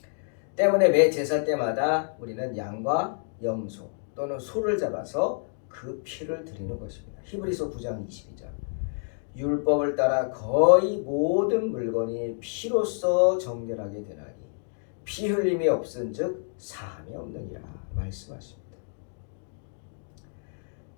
때문에 매 제사 때마다 우리는 양과 염소 또는 소를 잡아서 그 피를 드리는 것입니다. 히브리서 9장 22절. 율법을 따라 거의 모든 물건이 피로써 정결하게 되나니 피 흘림이 없은즉 사함이 없느니라 말씀하십니다.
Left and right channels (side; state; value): right; silent; digital silence